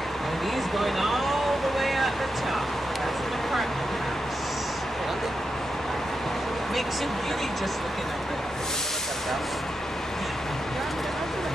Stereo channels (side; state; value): both; normal; correlation 0.87